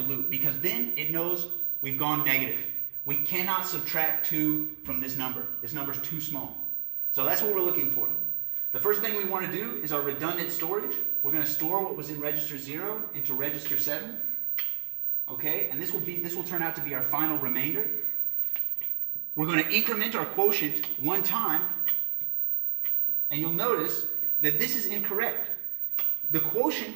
loop, because then it knows we've gone negative. We cannot subtract 2 from this number. This number is too small. So that's what we're looking for. The first thing we want to do is our redundant storage. We're going to store what was in register 0 into register 7. Okay, and this will turn out to be our final remainder. We're going to increment our quotient 1 time, and you'll notice that this is incorrect. The quotient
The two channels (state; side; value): silent; left; digital silence